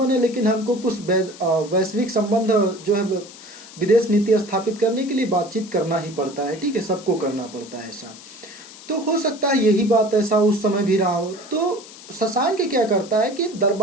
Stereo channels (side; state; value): left; noise; hiss, 18 dB below the sound